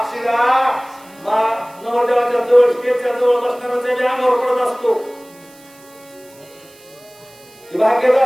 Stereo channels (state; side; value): noise; right; hiss, 26 dB below the sound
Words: नवरदेवाच्या जवळ स्टेजच्या जवळ बसणाऱ्याच्या अंगावर पडत असतो भाग्यच